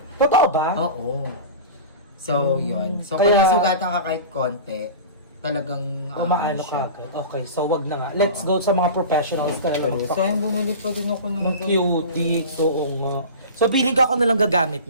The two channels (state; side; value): inverted; both; correlation -0.32